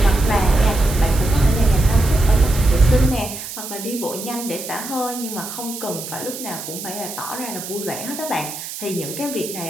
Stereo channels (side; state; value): right; noise; hiss, 9 dB below the sound